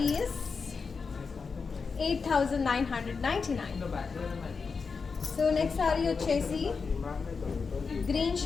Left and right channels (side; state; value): right; quieter; 5.0 dB